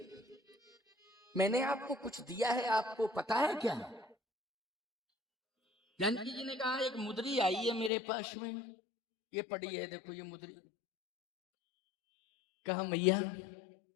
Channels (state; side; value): drops out; right; at 7.9 s